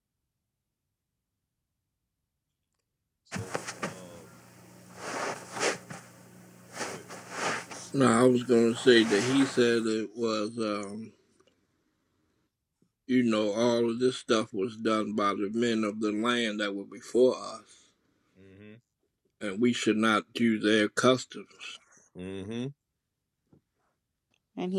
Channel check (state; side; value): identical; both; correlation 1.00